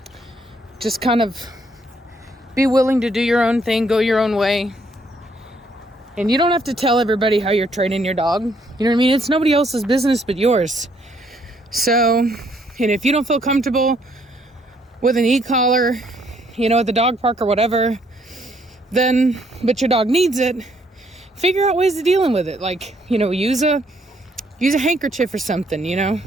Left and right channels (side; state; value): both; normal; correlation 0.69